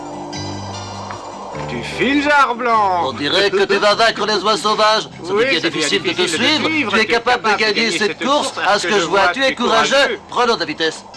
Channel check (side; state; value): both; identical; correlation 1.00